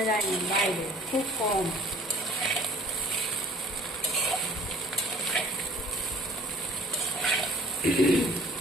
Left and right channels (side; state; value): right; noise; hum, 25 dB below the sound